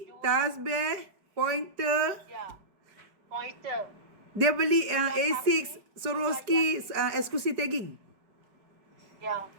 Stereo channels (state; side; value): late; left; 4.8 ms